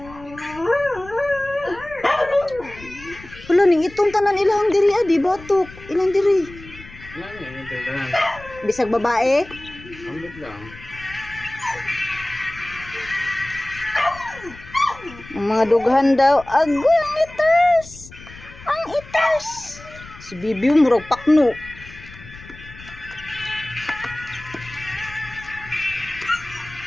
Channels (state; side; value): noise; left; rumble, 18 dB below the sound